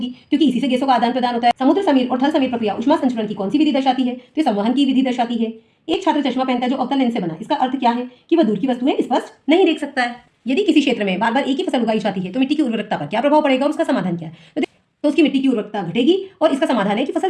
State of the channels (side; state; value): both; identical; correlation 1.00